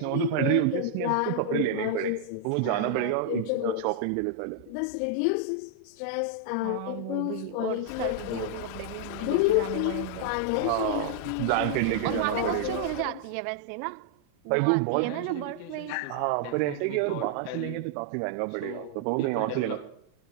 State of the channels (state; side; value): different; both; correlation -0.01